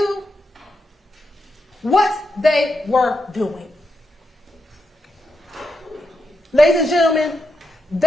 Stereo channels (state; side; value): normal; both; correlation 0.85